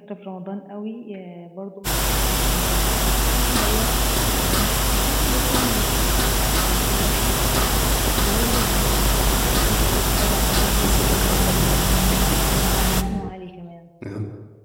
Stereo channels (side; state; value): both; identical; correlation 1.00